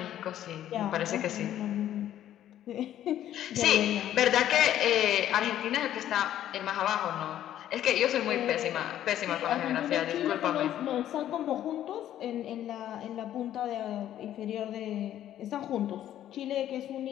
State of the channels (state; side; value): quieter; right; 11.7 dB